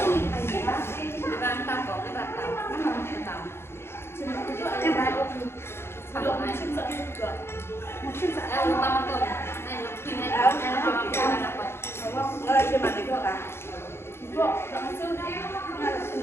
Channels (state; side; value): late; right; 0.12 ms